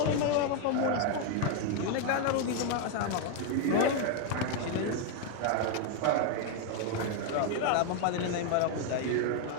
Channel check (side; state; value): both; different; correlation 0.01